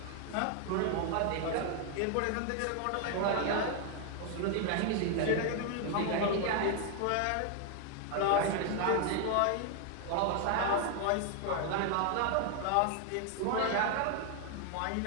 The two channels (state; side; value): different; both; correlation 0.00